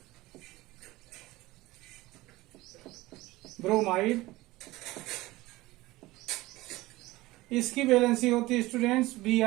ब्रोमाइड, इसकी वैलेंसी होती है स्टूडेंट्स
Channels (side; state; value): left; quieter; 19.2 dB